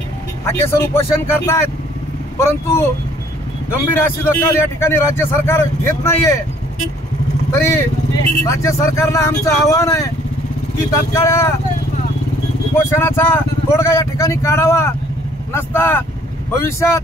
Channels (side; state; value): both; normal; correlation 0.60